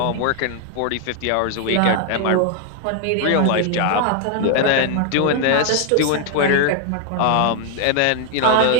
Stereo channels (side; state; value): both; different; correlation 0.00